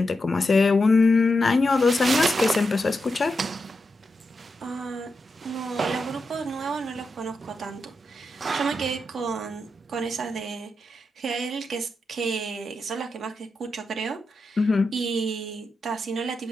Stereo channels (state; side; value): normal; both; correlation 0.87